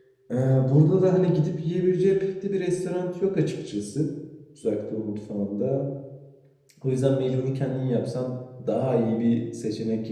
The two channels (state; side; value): identical; both; correlation 1.00